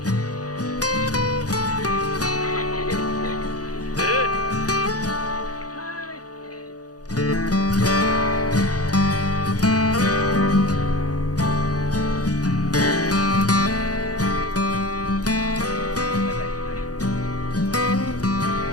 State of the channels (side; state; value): right; late; 0.67 ms